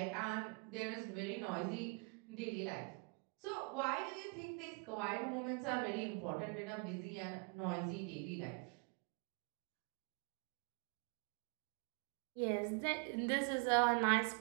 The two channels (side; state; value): left; quieter; 34.8 dB